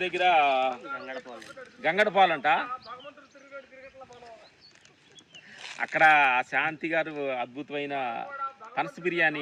దగ్గర గంగడపాలు అంట. అక్కడ శాంతి గారు అద్భుతమైన పనస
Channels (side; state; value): both; identical; correlation 1.00